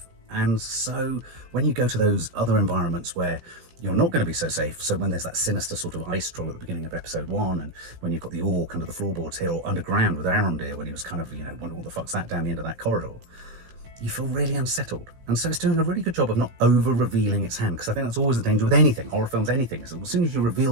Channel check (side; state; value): left; late; 16 ms